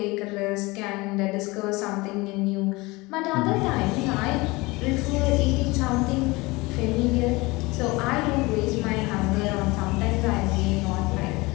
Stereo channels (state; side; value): quieter; right; 23.1 dB